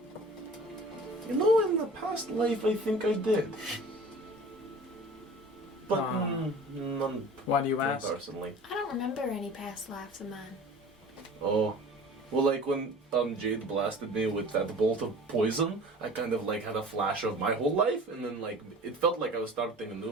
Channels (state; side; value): normal; both; correlation 0.42